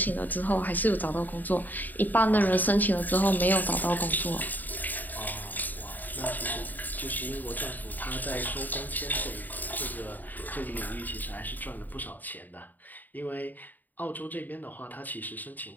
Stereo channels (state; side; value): late; right; 0.087 ms